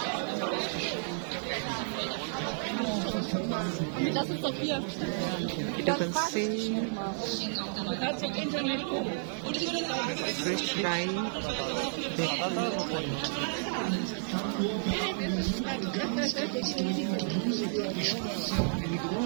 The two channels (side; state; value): left; silent; digital silence